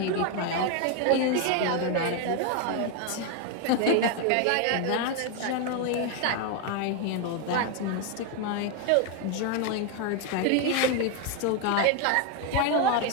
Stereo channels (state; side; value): different; both; correlation 0.01